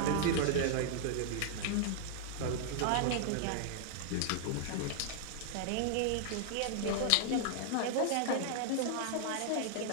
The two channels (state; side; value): different; both; correlation -0.01